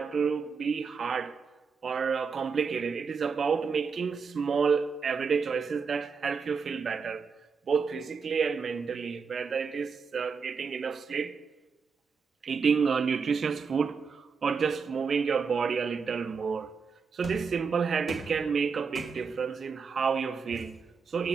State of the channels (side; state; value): left; quieter; 5.5 dB